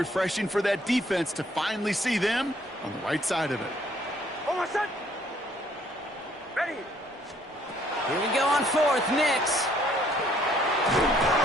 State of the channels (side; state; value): both; normal; correlation 0.63